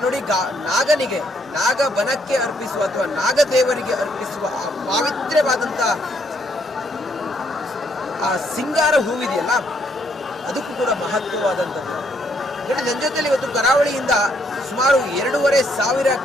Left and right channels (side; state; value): both; normal; correlation 0.71